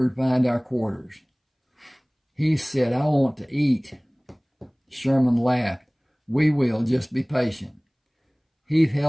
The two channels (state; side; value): identical; both; correlation 1.00